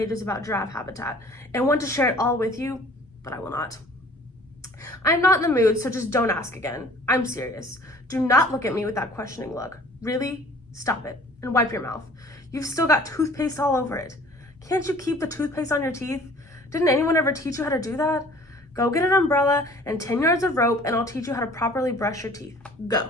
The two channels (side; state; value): both; normal; correlation 0.51